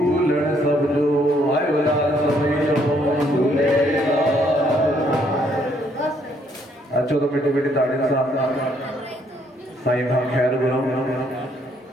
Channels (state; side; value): normal; both; correlation 0.69